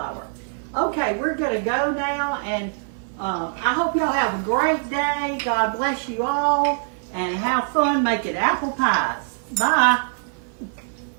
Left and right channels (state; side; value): silent; left; 55 dB below the other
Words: Okay, we're going to go now, and I hope y'all have a great day. God bless you all, and have fun making apple pies. Bye.